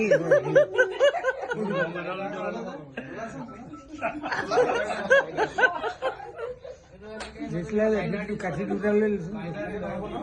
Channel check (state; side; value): identical; both; correlation 1.00